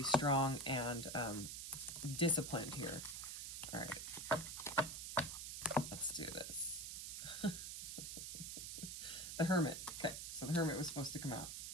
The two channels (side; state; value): right; noise; hiss, 6 dB below the sound